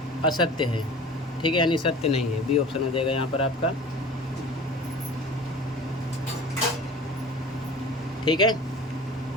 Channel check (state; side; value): normal; both; correlation 0.40